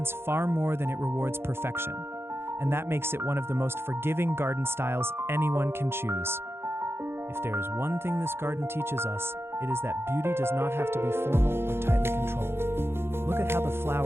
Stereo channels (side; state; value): left; late; 0.12 ms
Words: far more than it rewards perfection. and that makes it one of the most forgiving garden styles anyone can choose. If there is one thing this garden teaches us, it is that beauty does not have to be formal or tightly controlled. Look at how the